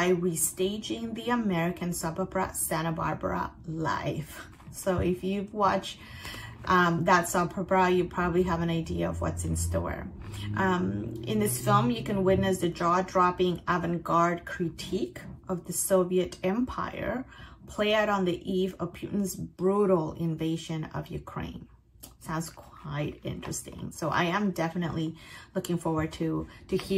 restaging the American soap opera Santa Barbara live. So if you've watched that soap opera, you probably have an idea of what's in store. In this film, you can witness the jaw-dropping avant-garde critique of the Soviet Empire play out on the eve of Putin's brutal invasion of Ukraine. Sounds quite interesting. So I am definitely looking forward to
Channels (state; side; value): identical; both; correlation 1.00